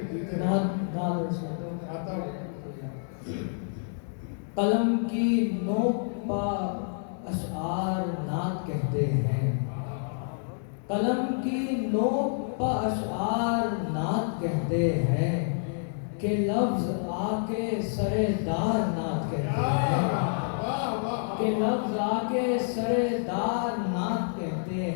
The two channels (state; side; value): silent; right; digital silence